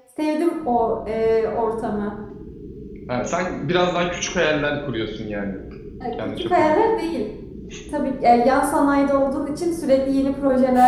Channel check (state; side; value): identical; both; correlation 1.00